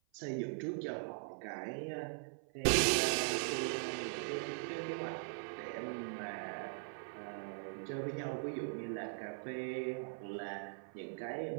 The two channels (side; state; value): left; silent; 50 dB below the other